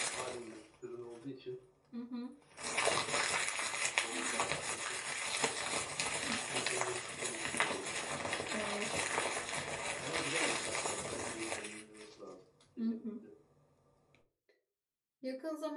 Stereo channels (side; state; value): both; identical; correlation 1.00